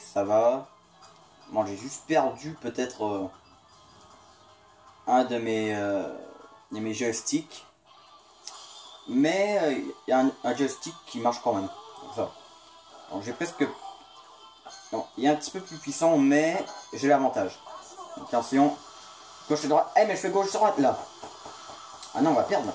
ça va. Bon, j'ai juste perdu peut-être un de mes joysticks. Mais il y a un joystick qui marche quand même. Ça. Donc j'ai presque... Non, il est un petit peu plus puissant, mais j'ai l'avantage. Donc attention, gauche et droite. Eh mais je fais gauche droite là. Ah non, on va perdre là.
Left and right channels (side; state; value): both; identical; correlation 1.00